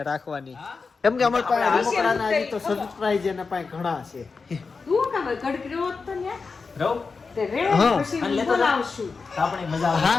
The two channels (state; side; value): quieter; right; 4.7 dB